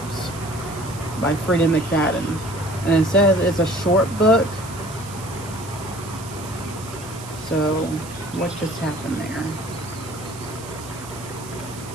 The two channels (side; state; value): right; noise; hiss, 16 dB below the sound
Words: by Freedom McFadden. And it says it's a short book. So what just happened there?